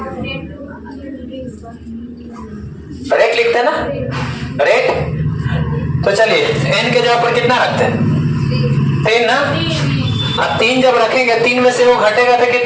रेट लिखते हैं ना रेट। तो चलिए n के जगह पर कितना रखते हैं 3 ना, अब 3 जब रखेंगे 3 में से वो घटेगा तो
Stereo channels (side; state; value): both; identical; correlation 1.00